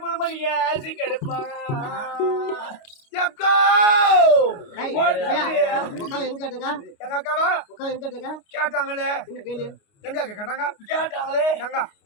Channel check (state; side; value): late; right; 29 ms